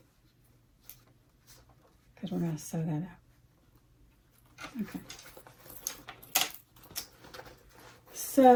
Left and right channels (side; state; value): both; identical; correlation 1.00